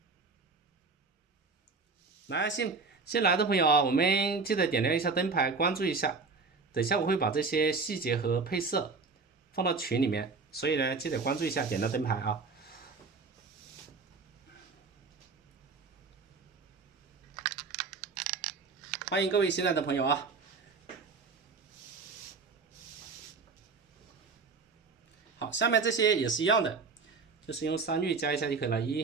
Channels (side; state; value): left; quieter; 4.5 dB